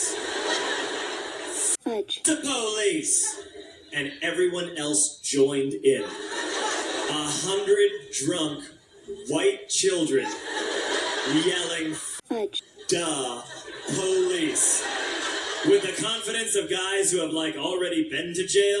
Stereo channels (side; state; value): both; identical; correlation 1.00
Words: Fudge. The police! And everyone else joined in. 100 drunk white children yelling, fudge. Duh, police. With the confidence of guys who have, like, already been to